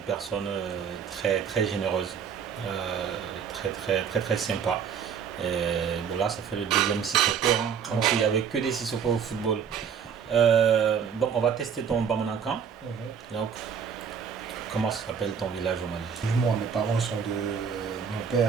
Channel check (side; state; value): left; quieter; 7.2 dB